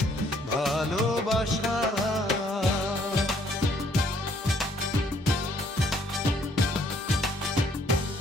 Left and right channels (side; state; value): both; normal; correlation 0.65